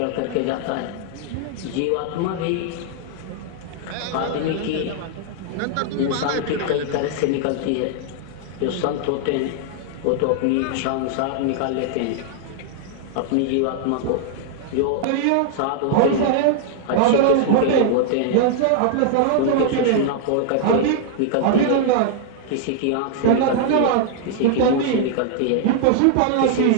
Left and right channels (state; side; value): different; both; correlation -0.01